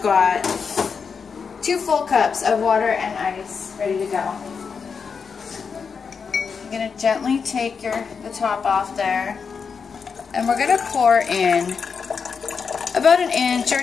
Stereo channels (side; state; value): right; quieter; 5.8 dB